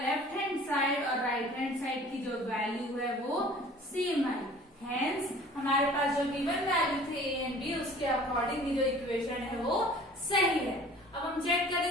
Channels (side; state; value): both; normal; correlation 0.48